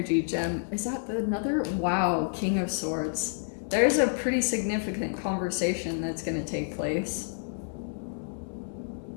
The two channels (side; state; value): right; silent; digital silence